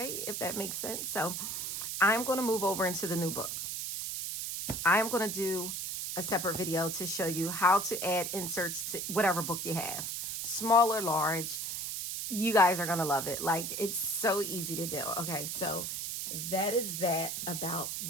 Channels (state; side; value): noise; right; hiss, 4 dB below the sound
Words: If that makes sense. So I'm going to move over into the new book. I'm going to do a separate video to show you how to add inserts to whatever book you have, small or large. You guys are going to love it. Like, it's so easy to do. Okay, so that is that about